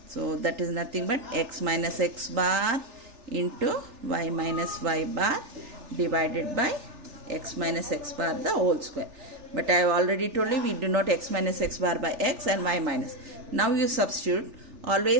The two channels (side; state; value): left; late; 3.4 ms